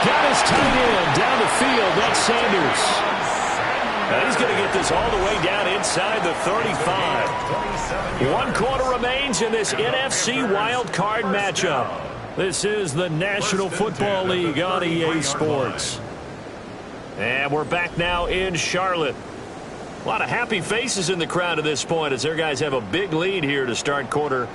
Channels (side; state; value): both; identical; correlation 1.00